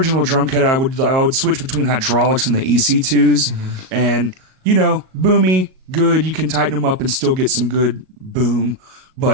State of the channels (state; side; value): late; left; 38 ms